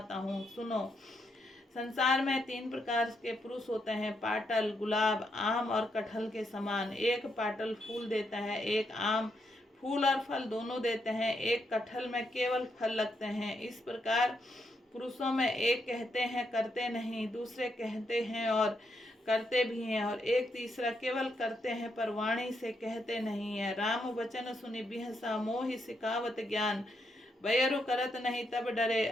हूँ, सुनो। संसार में 3 प्रकार के पुरुष होते हैं, पाटल, गुलाब, आम और कटहल के समान। एक पाटल फूल देता है, एक आम फूल और फल दोनों देते हैं, एक कटहल में केवल फल लगते हैं। इस प्रकार पुरुषों में एक कहते हैं करते नहीं, दूसरे कहते हैं और करते भी हैं, और एक तीसरा केवल करते हैं पर वाणी से कहते नहीं है। राम वचन सुनि बिहसा, मोहि सिखावत ज्ञान। बयरु करत नहीं तब डरे,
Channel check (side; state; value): both; normal; correlation 0.79